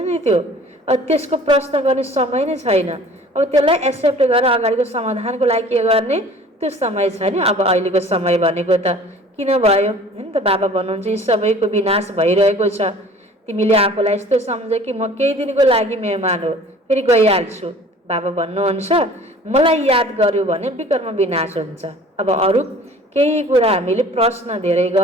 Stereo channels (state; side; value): normal; both; correlation 0.48